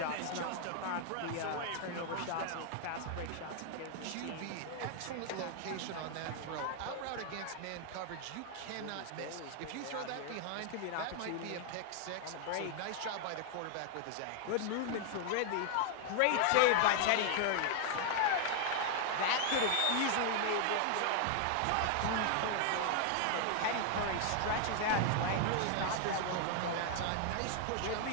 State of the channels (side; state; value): both; different; correlation 0.00